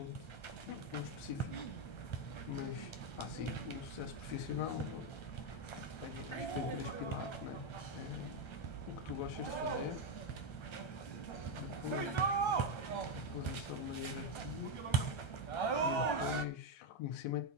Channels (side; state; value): right; late; 1.3 ms